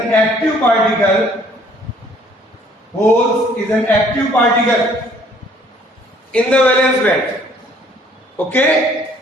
active particle. Holes is an active particle in the valence band. Okay,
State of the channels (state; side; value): normal; both; correlation 0.60